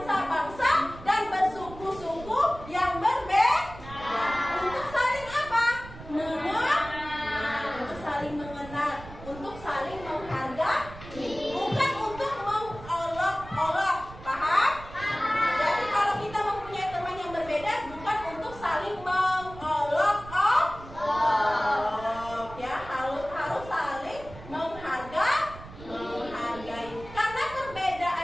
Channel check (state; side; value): noise; right; rumble, 16 dB below the sound